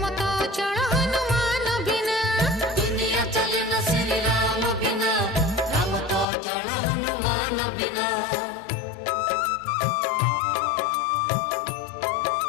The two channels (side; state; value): right; drops out; at 6.2 s